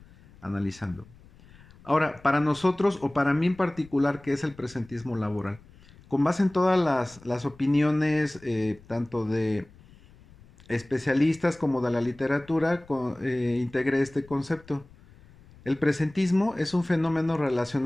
analizando. Ahora, para nosotros, o para mí en particular, ¿qué es el presentismo laboral? Con base en todas las opiniones, tanto de especialistas como de la literatura, integré este concepto. El presentismo es un fenómeno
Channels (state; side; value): noise; left; rumble, 24 dB below the sound